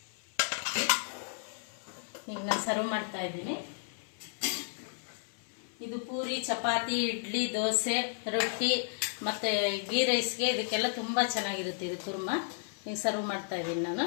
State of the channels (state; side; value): silent; right; 56 dB below the other